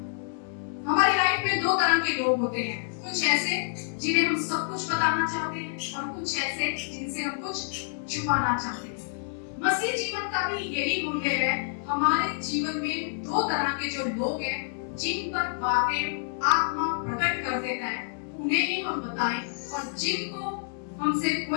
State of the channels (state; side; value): silent; right; 59 dB below the other